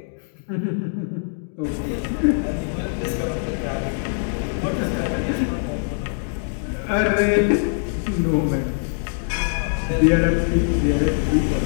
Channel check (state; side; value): silent; right; digital silence